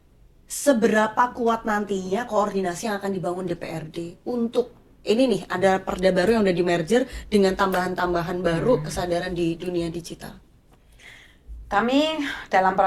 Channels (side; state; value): both; identical; correlation 1.00